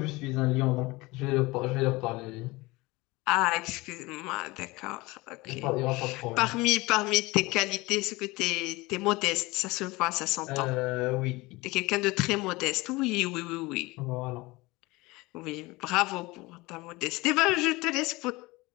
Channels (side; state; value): right; quieter; 22.2 dB